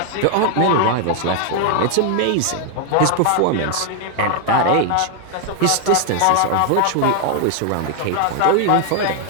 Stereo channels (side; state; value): both; different; correlation 0.00